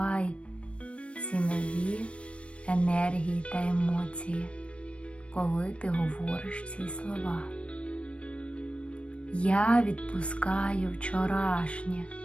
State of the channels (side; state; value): right; late; 0.061 ms